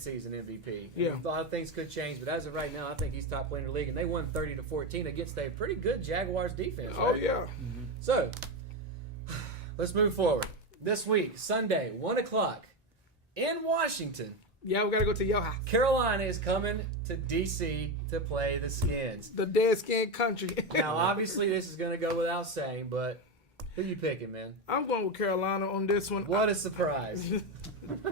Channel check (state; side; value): normal; both; correlation 0.14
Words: MVP. Yeah. A lot of things could change, but as of right now, I think he's top player in the league, and they won 30-14 against a pretty good Jaguars defense. Oh right? yeah. So, let's move forward. This week, Sunday, 1 o'clock, in Washington, Yeah, we gotta go to your house. Carolina is coming to D.C. to play the Skins. The dead skin country. Now, obviously, this is going to go without saying, but who you picking, man? I'm going with Carolina on this one. What a surprise.